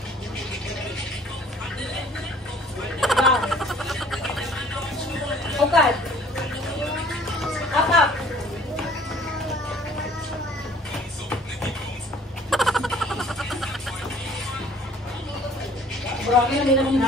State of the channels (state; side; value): normal; both; correlation 0.54